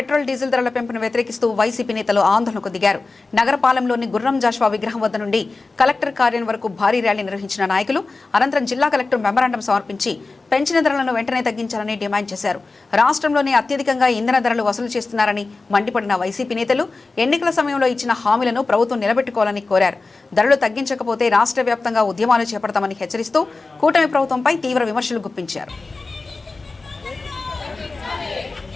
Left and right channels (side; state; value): right; quieter; 3.7 dB